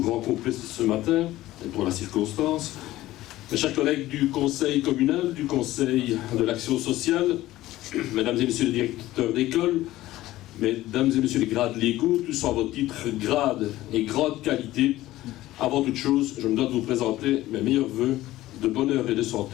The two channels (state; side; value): quieter; right; 16.0 dB